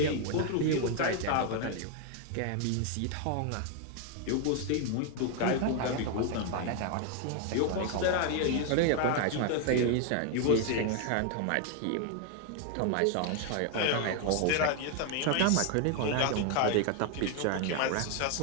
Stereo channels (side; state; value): both; different; correlation 0.00